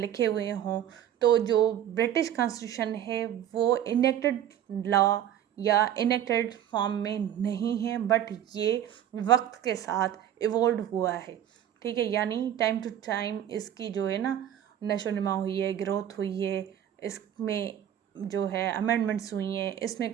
हुए हों, तो जो ब्रिटिश कॉन्स्टिट्यूशन है वो इनेक्टेड लॉ या इनेक्टेड फॉर्म में नहीं है, बट ये वक्त के साथ इवॉल्व हुआ है, ठीक है। यानी टाइम टू टाइम इसकी जो है ना नशो नुमा हुई है, ग्रोथ हुई है, इसमें जो है अमेंडमेंट्स हुई हैं, इसमें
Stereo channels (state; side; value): quieter; left; 10.6 dB